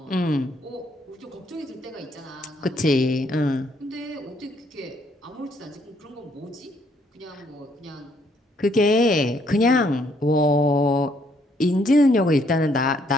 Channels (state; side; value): normal; both; correlation 0.69